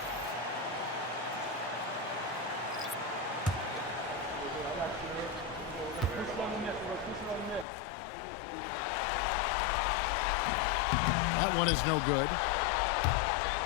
That one is no good.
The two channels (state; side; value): drops out; right; at 7.7 s